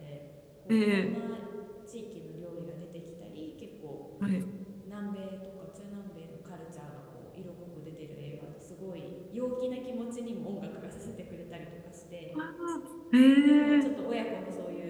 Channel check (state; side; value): identical; both; correlation 1.00